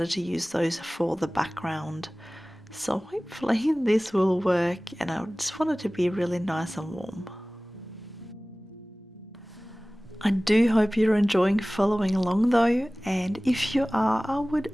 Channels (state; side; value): normal; both; correlation 0.98